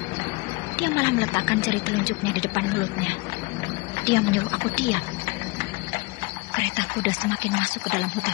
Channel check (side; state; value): right; quieter; 25.0 dB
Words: Dia malah meletakkan jari telunjuknya di depan mulutnya. Dia menyuruh aku diam. Kereta kuda semakin masuk ke dalam